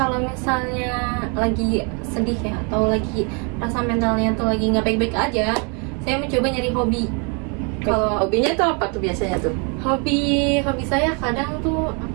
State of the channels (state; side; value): quieter; left; 35.2 dB